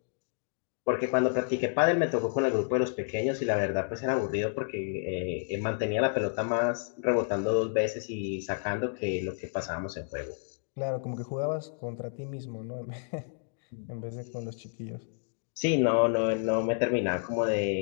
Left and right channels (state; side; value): silent; right; digital silence